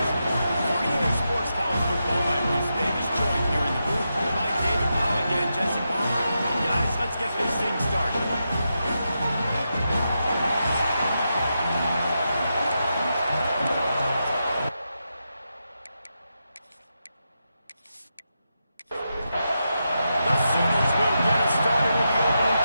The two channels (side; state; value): both; inverted; correlation -0.87